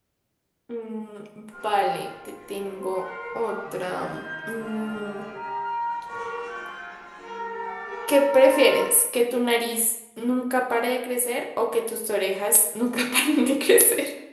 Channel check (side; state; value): both; identical; correlation 1.00